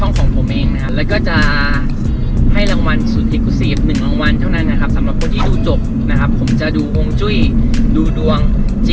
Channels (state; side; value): identical; both; correlation 1.00